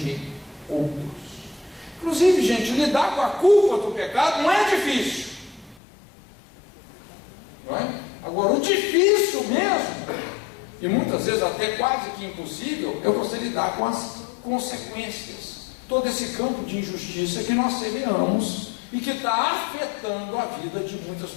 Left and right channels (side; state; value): right; drops out; at 5.8 s